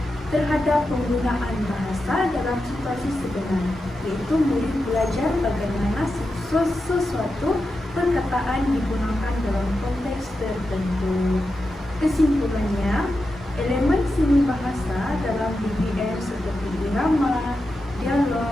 terhadap penggunaan bahasa dalam situasi sebenar, iaitu murid belajar bagaimana sesuatu perkataan digunakan dalam konteks tertentu. Kesimpulannya, elemen seni bahasa dalam DBM seperti irama,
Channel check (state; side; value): normal; both; correlation 0.89